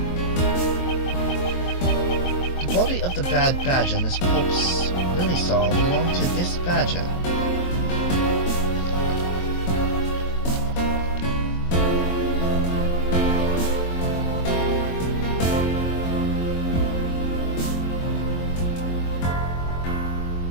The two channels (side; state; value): right; late; 22 ms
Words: The body of the bad badger Miss Pops really saw belonged to this badger.